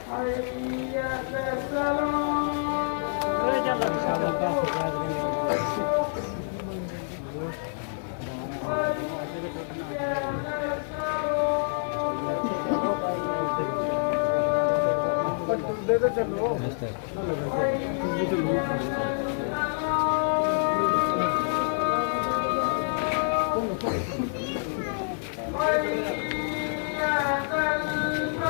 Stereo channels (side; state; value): right; silent; 56 dB below the other